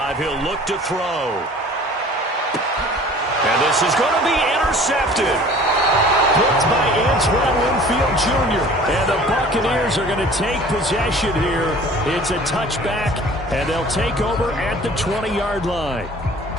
He'll look to throw. And this is going to be intercepted. Picked by Antoine Winfield Jr. And the Buccaneers are going to take possession here. It's a touchback, and they'll take over at the 20-yard line.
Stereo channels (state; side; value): normal; both; correlation 0.47